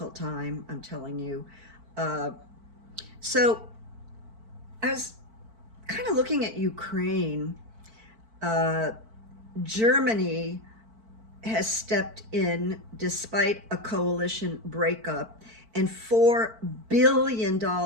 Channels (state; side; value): late; left; 4.5 ms